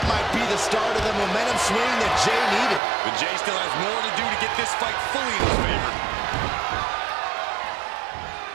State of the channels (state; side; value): drops out; left; at 2.8 s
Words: might be the start of the momentum swing that Jey needed. But Jey still has more to do to get this fight fully in his favor.